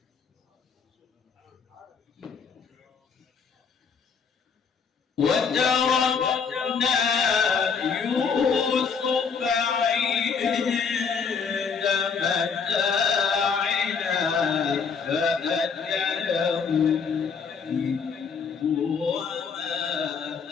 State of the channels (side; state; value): right; quieter; 5.9 dB